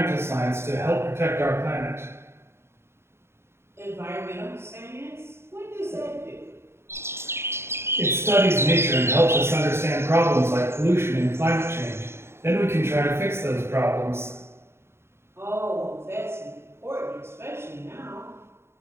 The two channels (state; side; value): late; left; 0.12 ms